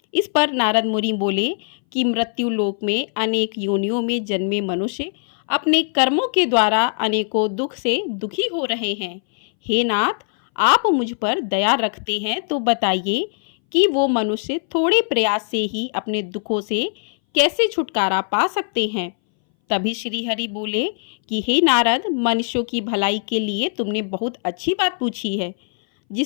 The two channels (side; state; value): right; silent; 62 dB below the other